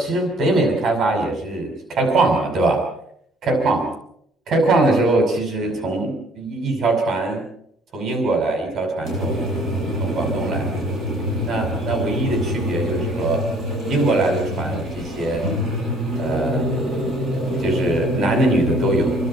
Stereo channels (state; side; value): normal; both; correlation 0.58